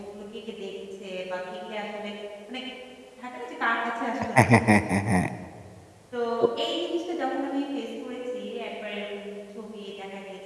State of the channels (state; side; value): identical; both; correlation 1.00